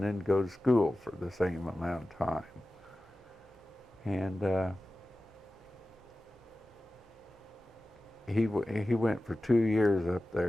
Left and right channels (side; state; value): both; normal; correlation 0.95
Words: then go to school for the same amount of time. And he went for 2 years up